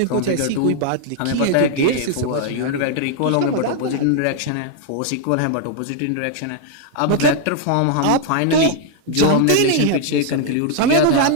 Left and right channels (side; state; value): both; different; correlation 0.00